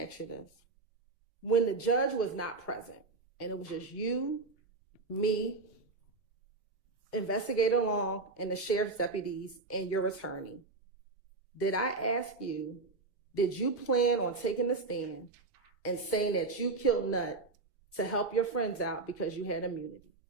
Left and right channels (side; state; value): left; quieter; 3.8 dB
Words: you this. When the judge was not present and it was just you, me, investigator Long, and the sheriff's deputies and your attorney, did I ask you, did you plan on taking the stand and saying that you killed Nut to help your friends out because you had immunity?